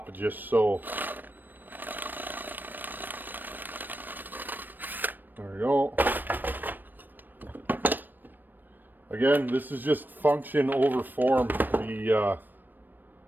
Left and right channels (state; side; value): late; left; 0.091 ms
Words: just so. There we go. Again, this is just function over form.